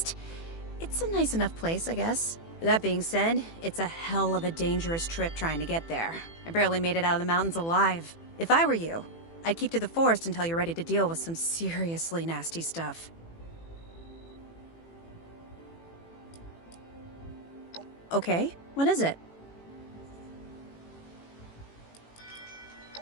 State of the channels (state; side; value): late; right; 18 ms